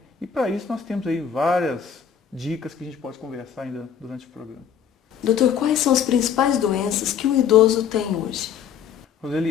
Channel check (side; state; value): right; quieter; 8.0 dB